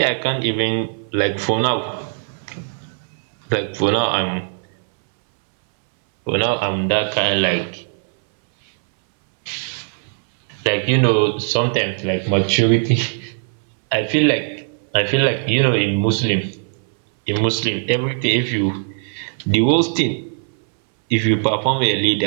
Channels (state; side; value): silent; left; 63 dB below the other